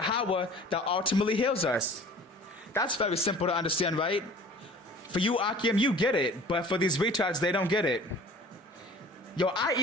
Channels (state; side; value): normal; both; correlation 0.46